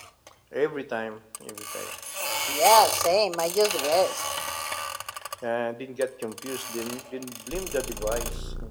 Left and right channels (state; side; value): identical; both; correlation 1.00